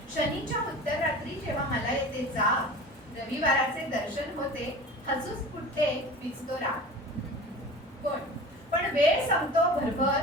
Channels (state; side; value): normal; both; correlation 0.37